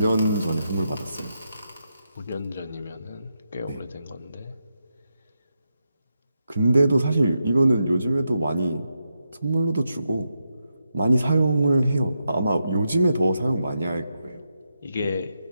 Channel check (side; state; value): both; inverted; correlation -0.86